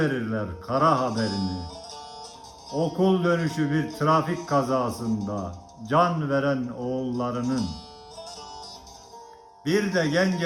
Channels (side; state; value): both; identical; correlation 1.00